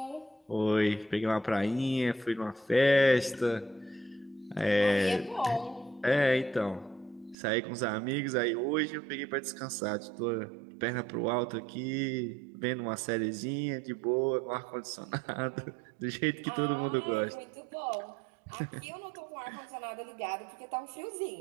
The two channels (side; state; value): left; drops out; at 7.4 s